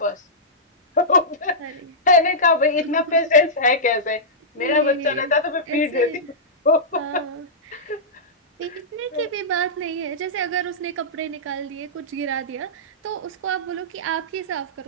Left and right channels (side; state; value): both; normal; correlation -0.14